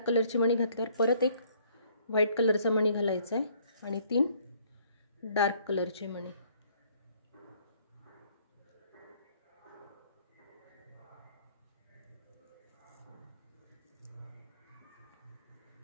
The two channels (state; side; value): inverted; both; correlation -0.62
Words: कलरची मणी घातल्यावर परत एक व्हाईट कलरचा मणी घालायचा आहे आणि 3 डार्क कलरचे मणी।